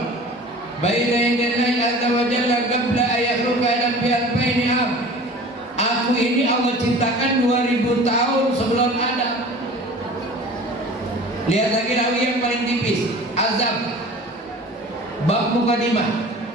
baina yadallahi azza wa jalla qabla an yakhluqa alam bi alfaini am. Aku ini Allah ciptakan 2000 tahun sebelum Adam. Lihat lagi rawi yang paling tipis, Azab bab mukadimah.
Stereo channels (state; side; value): normal; both; correlation 0.42